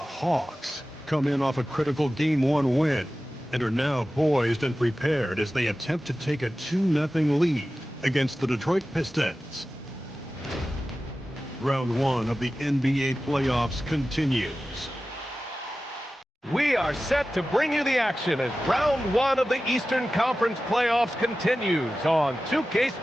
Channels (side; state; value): both; normal; correlation 0.95